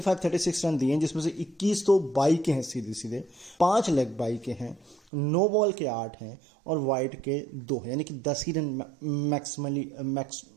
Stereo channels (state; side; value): drops out; left; at 5.0 s